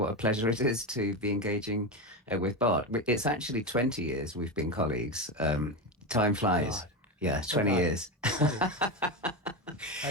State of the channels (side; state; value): both; normal; correlation 0.16